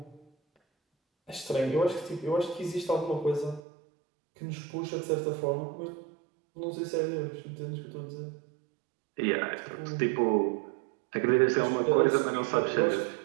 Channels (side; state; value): left; drops out; at 3.6 s